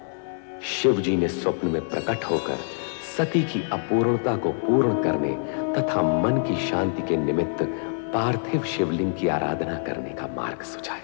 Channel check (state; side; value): silent; right; 62 dB below the other